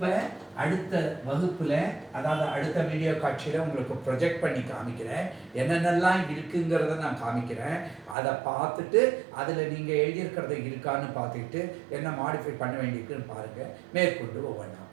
அடுத்த வகுப்பில், அதாவது அடுத்த வீடியோ காட்சியில் உங்களுக்கு ப்ரொஜெக்ட் பண்ணி காமிக்கிறேன். என்னென்னலாம் இருக்குங்கிறத நான் காமிக்கிறேன். அதை பார்த்துட்டு அதில் நீங்கள் எழுதியிருக்கிறத இருக்கான்னு பார்த்துக்கிட்டு என்ன மாடிஃபை பண்ண வேண்டியிருக்குன்னு பாருங்கள். மேற்கொண்டு ஒவ்வொன்றா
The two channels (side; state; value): left; drops out; at 8.2 s